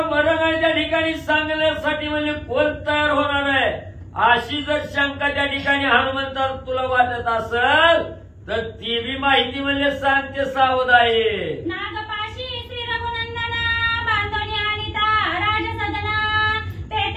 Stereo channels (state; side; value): identical; both; correlation 1.00